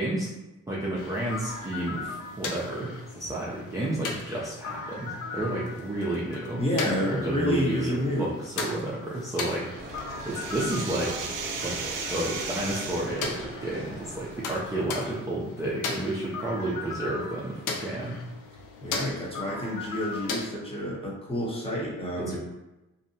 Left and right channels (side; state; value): both; normal; correlation 0.45